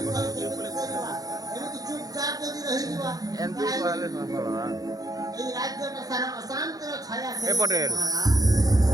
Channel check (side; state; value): left; late; 0.18 ms